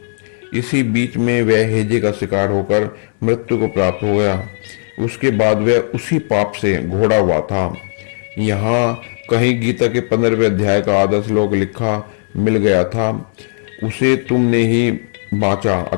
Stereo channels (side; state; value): right; silent; 69 dB below the other